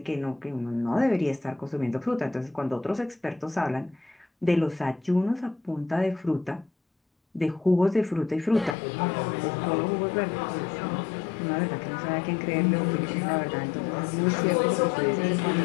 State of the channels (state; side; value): drops out; right; at 8.8 s